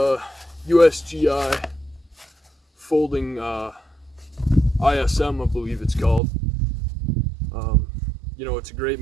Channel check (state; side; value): drops out; left; at 6.2 s